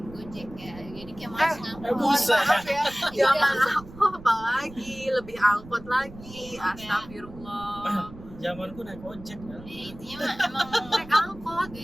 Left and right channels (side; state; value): right; noise; rumble, 17 dB below the sound